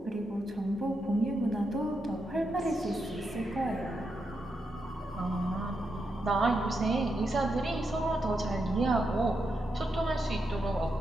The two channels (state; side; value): normal; both; correlation 0.84